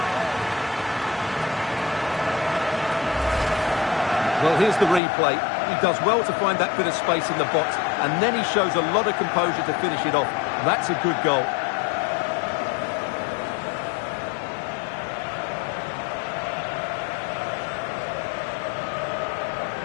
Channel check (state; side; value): drops out; right; at 5.0 s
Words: Well, here's the replay. He does well to find that bit of space in the box, and then he shows a lot of composure to finish it off. That's a good goal.